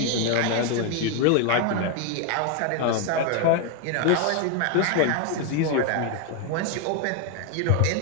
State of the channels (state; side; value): different; both; correlation 0.01